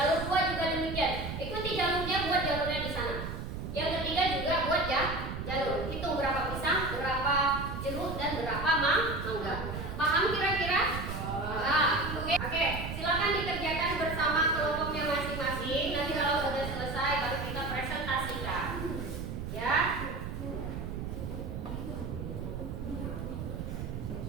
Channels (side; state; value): right; noise; rumble, 6 dB below the sound